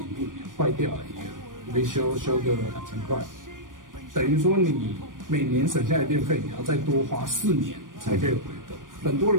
第5年坏掉了，你维修个2000块，等于说你每年省下来的电费你要再多花4年才可以回本。很多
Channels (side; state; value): left; late; 0.89 ms